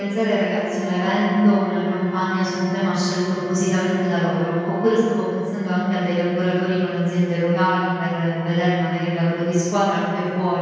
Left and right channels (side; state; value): both; identical; correlation 1.00